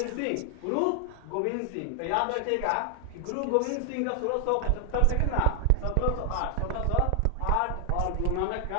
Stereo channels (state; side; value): different; both; correlation 0.00